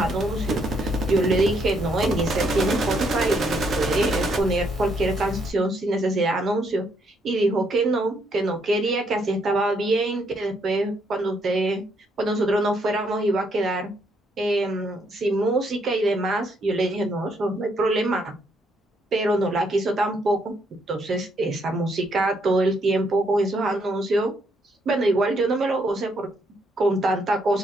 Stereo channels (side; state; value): both; normal; correlation 0.73